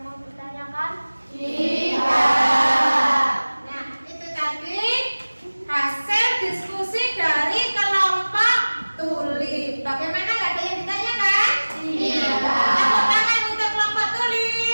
mau ditanyakan? Tidak. Nah, itu tadi hasil diskusi dari kelompok Tulip. Bagaimana, nggak ada yang ditanyakan? Tidak. Tepuk tangan untuk kelompok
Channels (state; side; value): inverted; both; correlation -1.00